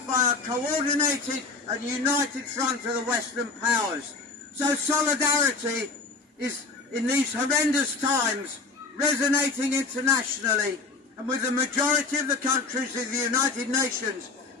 by a coordinated and united front of the Western powers. So solidarity is, in these horrendous times, resonating internationally, and with the majority of the countries of the United Nations,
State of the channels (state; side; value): quieter; right; 4.0 dB